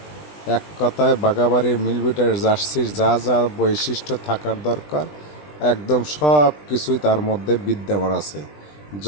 এক কথায় বাগাবাড়ির মিলবিটার জার্সির যা যা বৈশিষ্ট্য থাকার দরকার একদম সব কিছুই তার মধ্যে বিদ্যমান আছে।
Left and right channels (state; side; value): late; right; 20 ms